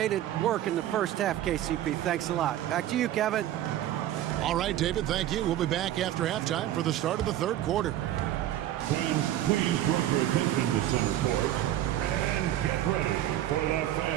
it work in the first half, KCP. Thanks a lot. Back to you, Kevin. All right, David, thank you. We'll be back after halftime for the start of the third quarter. Fans, please direct your attention to center court. And get ready for the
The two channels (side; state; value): left; quieter; 12.8 dB